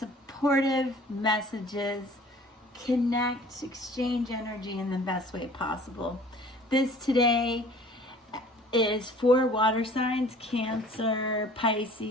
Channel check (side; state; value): both; normal; correlation 0.50